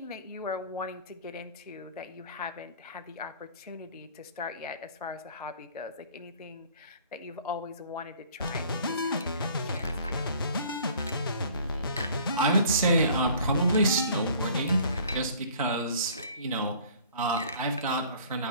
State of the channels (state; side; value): inverted; both; correlation -0.51